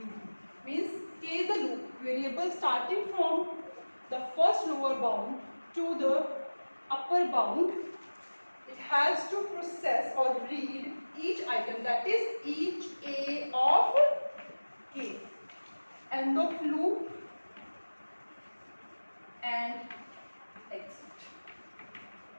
Means K is the loop variable starting from the first lower bound to the upper bound. It has to process or read each item, that is each A of K. End of loop and exit.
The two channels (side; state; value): both; inverted; correlation -1.00